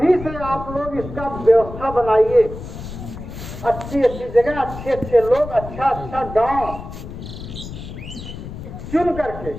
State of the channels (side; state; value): left; noise; rumble, 11 dB below the sound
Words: से आप लोग इसका व्यवस्था बनाइए, अच्छी जगह, अच्छे लोग, अच्छा गांव चुन करके